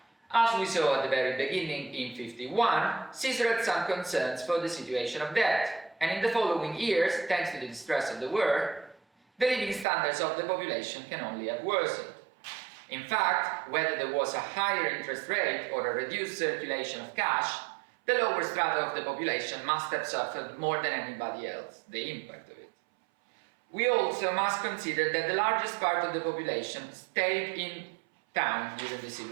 As we saw at the very beginning in 51, Caesar had some concerns for the situation of debt, and in the following years, thanks to the distress of the war, the living standards of the population can only have worsened. In fact, whether there was a higher interest rate or a reduced circulation of cash, the lower strata of the population must have suffered more than anybody else the impact of it. We also must consider that the largest part of the population stayed in town during the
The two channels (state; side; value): drops out; left; at 9.9 s